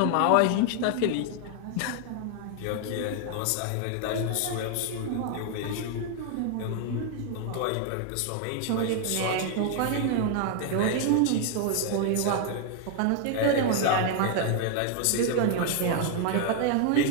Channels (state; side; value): different; both; correlation 0.00